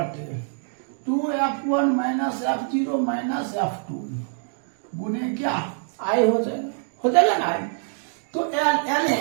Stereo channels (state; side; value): silent; left; digital silence